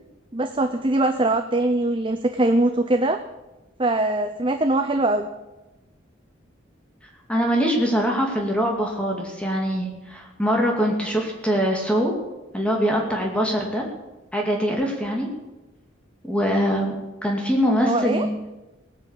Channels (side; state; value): both; normal; correlation 0.60